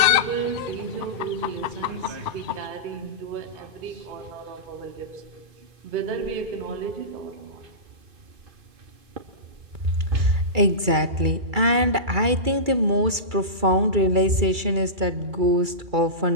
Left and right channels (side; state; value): left; late; 2.3 ms